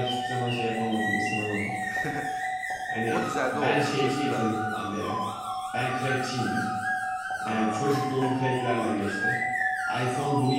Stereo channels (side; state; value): left; noise; rumble, 27 dB below the sound